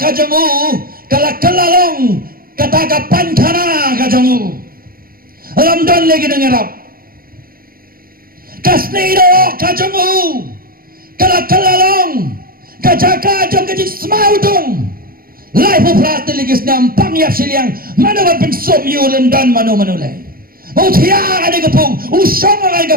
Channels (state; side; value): late; left; 0.42 ms